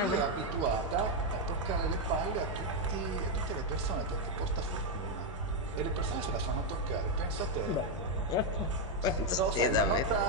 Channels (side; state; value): both; normal; correlation 0.03